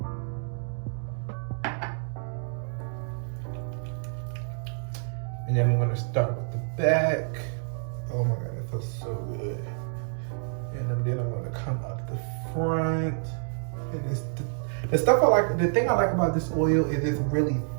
And then I'm gonna start with the back. Oh my God, that feels so good. And then I'm gonna come up the front. And it's the stuff I like, the thing I like about this oil is it's really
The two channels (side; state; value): left; silent; 59 dB below the other